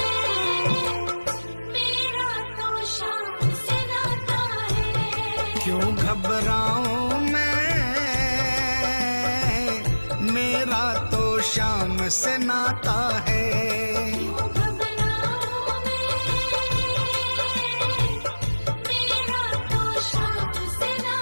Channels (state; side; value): inverted; both; correlation -1.00